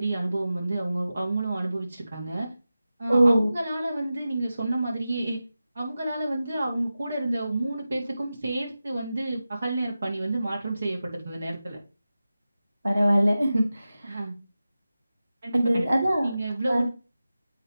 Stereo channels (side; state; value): both; inverted; correlation -0.94